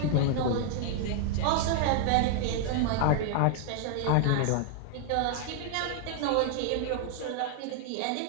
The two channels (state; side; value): different; both; correlation 0.00